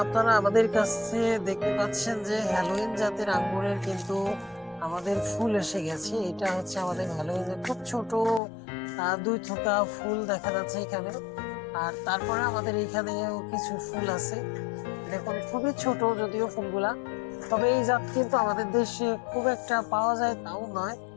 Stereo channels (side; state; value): right; drops out; at 8.4 s